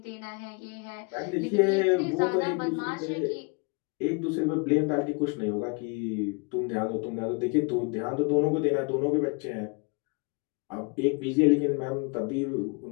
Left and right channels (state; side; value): quieter; right; 32.6 dB